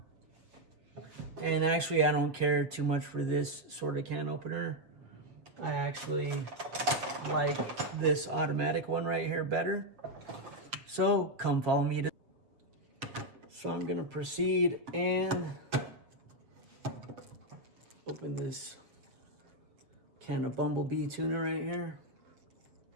And actually, I don't care too much for this sort of can opener. I actually like this automatic one right here better. So come follow me. So I'm gonna proceed and open this can of bumblebee tuna right here,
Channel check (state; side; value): late; left; 7.4 ms